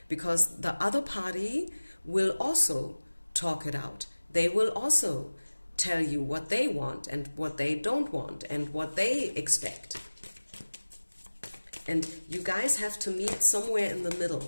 because the other party will also talk it out. They will also tell you what they want and what they don't want and what they expect. And you guys have to meet somewhere in the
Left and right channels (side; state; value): both; inverted; correlation -1.00